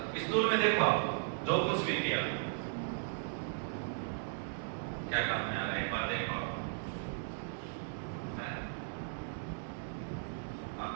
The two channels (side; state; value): left; silent; 53 dB below the other